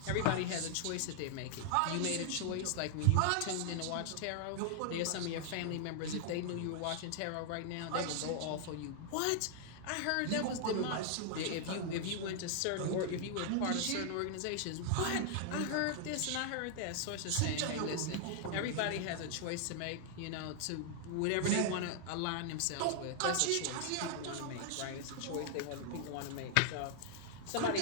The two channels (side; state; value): both; different; correlation 0.00